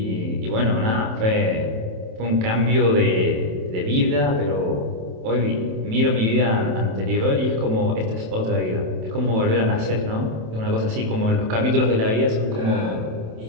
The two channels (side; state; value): left; late; 27 ms